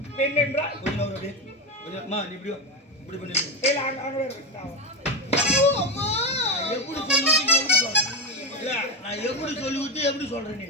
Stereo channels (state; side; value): normal; both; correlation 0.13